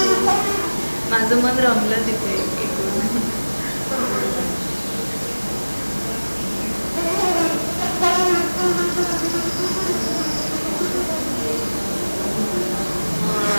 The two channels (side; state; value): both; inverted; correlation -1.00